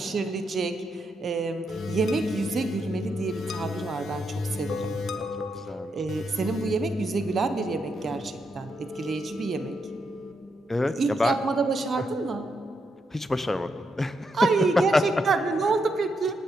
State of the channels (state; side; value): normal; both; correlation 0.81